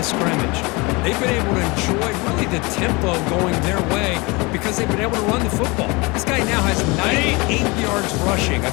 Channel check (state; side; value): quieter; right; 26.0 dB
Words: scrimmage. They've been able to enjoy really the tempo going their way because they've been able to run the football. This guy now has 98 yards rushing. A